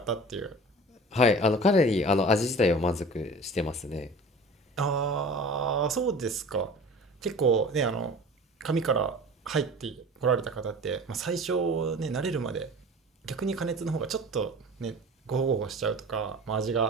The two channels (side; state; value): both; normal; correlation 0.40